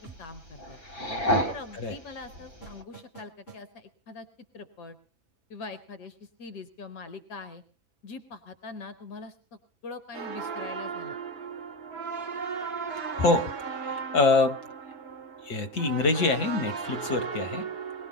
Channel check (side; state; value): right; late; 6.6 ms